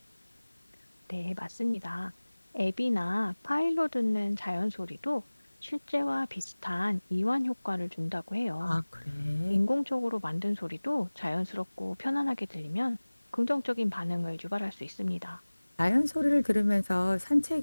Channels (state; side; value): inverted; both; correlation -1.00